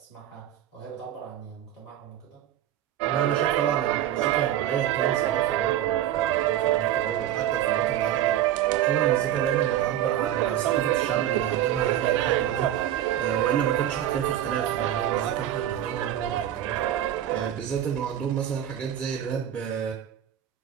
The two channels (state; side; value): quieter; left; 11.6 dB